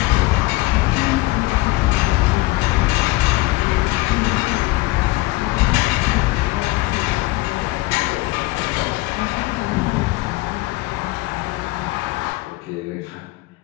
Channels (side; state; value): right; quieter; 20.8 dB